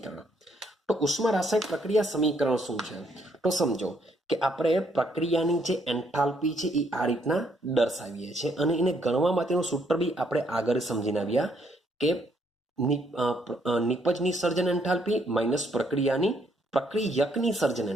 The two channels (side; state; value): both; normal; correlation 0.71